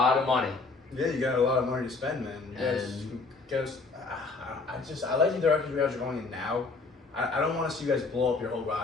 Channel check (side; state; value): right; quieter; 3.9 dB